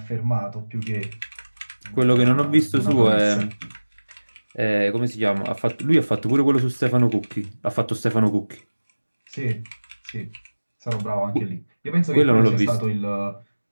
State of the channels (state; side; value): inverted; both; correlation -1.00